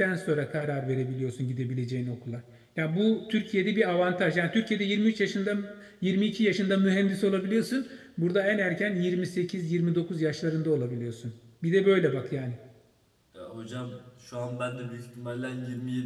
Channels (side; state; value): both; identical; correlation 1.00